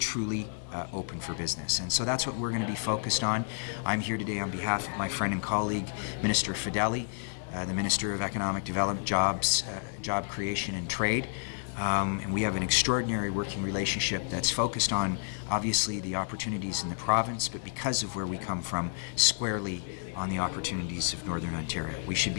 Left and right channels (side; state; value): right; silent; digital silence